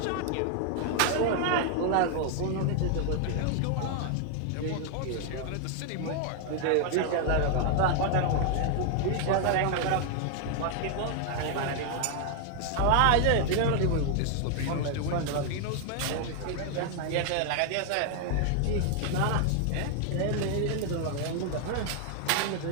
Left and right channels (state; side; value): different; both; correlation 0.00